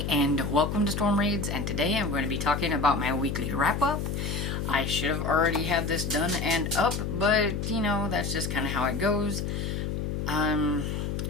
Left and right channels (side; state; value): left; noise; hum, 2 dB below the sound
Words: and welcome to Storm Reads, and today I'm going to be talking about my weekly wrap-up. I should have already had this done and up, but you know, that's just kind of how it goes.